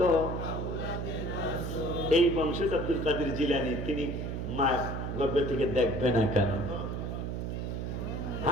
এই বংশে আব্দুল কাদের জিলানী, তিনি মা গর্ভে থেকে দেখবে না কেন?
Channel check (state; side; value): noise; right; hum, 3 dB below the sound